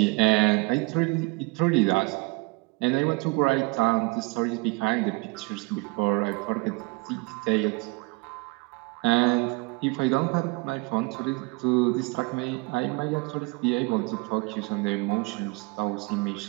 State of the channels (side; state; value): left; quieter; 27.2 dB